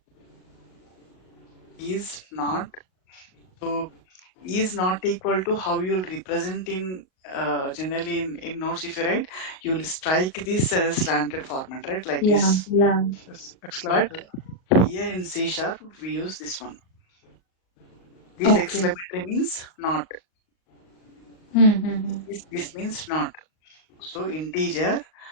is not, so is not equal to how you'll represent in generally in notes. If you write, you'll strike this as slanted format, right? Like this. Yeah. Yes. But Exclamatory. here in C# we use this one. This Okay. exclamatory means not. Mm-hmm. This means not. So integer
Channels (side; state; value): right; late; 38 ms